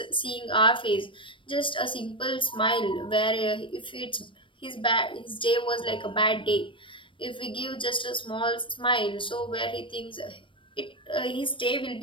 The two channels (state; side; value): late; right; 0.25 ms